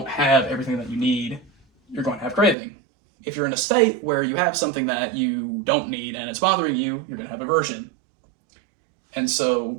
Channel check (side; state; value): left; drops out; at 2.6 s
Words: have everything that you need, you're going to have craving. If you're in a state where you have something that you don't need and it's bothering you, you're going to have aversion. And